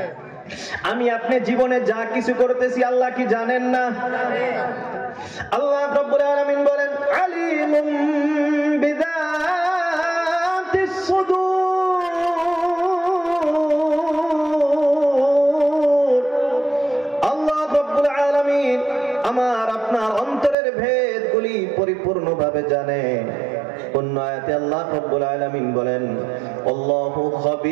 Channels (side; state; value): left; drops out; at 20.6 s